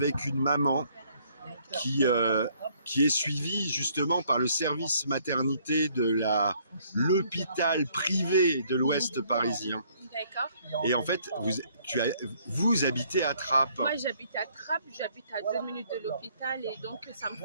une maman qui est suivi justement par le service maternité de l'hôpital privé de l'Ouest parisien. D'accord. Et en fait, vous habitez à Trappes. Moi, j'habite à Trappes, j'habite à 2 minutes de l'hôpital et donc ça me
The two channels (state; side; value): inverted; both; correlation -0.64